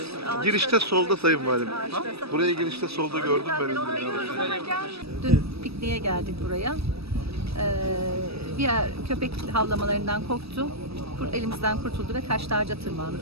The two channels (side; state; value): left; late; 0.78 ms